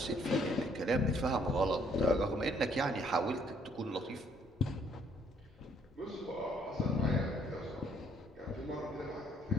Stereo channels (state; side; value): normal; both; correlation 0.65